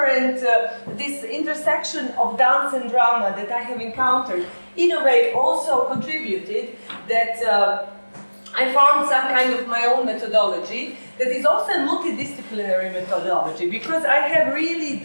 intersection of dance and drama that I have encountered, in a way also contributed that I found some kind of my own methodology that is also a multidisciplinary methodology, because I have really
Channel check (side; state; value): both; inverted; correlation -1.00